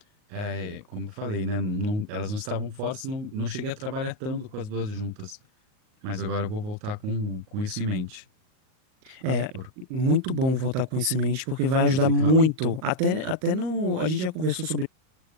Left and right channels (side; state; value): left; late; 38 ms